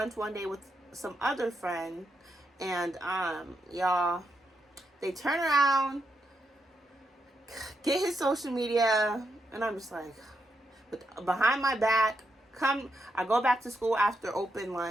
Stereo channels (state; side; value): normal; both; correlation 0.82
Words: one day with some other friend, and y'all, they turn around, get his social media, and I'm just like, behind my back, I go back to school after